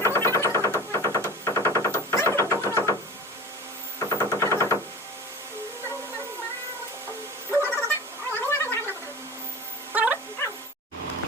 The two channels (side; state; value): both; normal; correlation 0.36